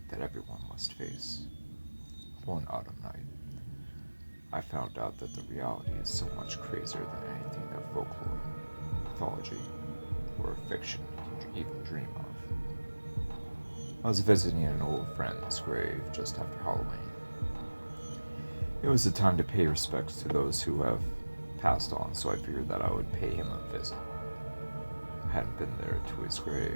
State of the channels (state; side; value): inverted; both; correlation -1.00